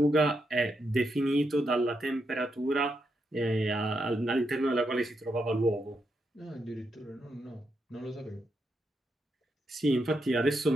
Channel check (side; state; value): both; normal; correlation 0.82